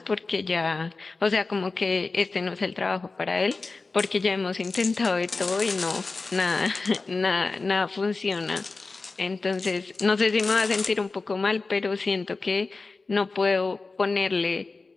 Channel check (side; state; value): right; quieter; 3.8 dB